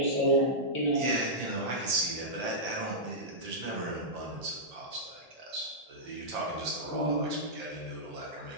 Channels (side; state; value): left; late; 1.8 ms